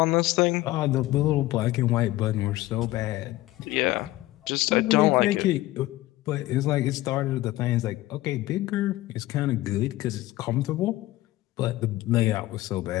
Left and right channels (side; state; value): right; quieter; 17.2 dB